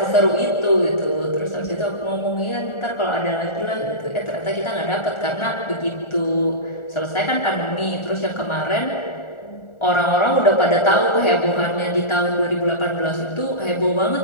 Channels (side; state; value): right; late; 1.4 ms